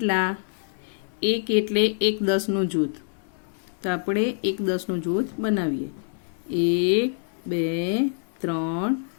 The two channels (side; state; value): right; silent; 61 dB below the other